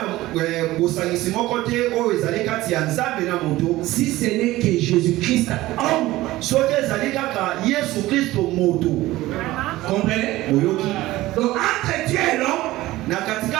bosangisi moko te oyo ezali kati ya nzambe na moto. Si ce n'est que Jésus-Christ, homme. soki ezali kaka Yesu Kristo moto. Comprenez? oyoki Donc entre Dieu et l'homme, na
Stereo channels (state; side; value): quieter; left; 17.3 dB